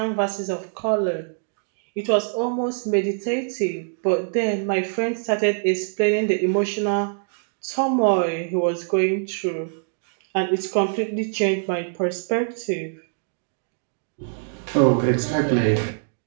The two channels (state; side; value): silent; left; digital silence